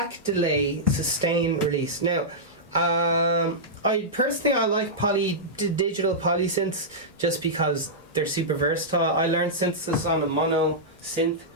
delay, sustain, release. Now, I like digital polysynths just because they're super versatile. I learned synthesis on a mono synth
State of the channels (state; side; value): normal; both; correlation -0.11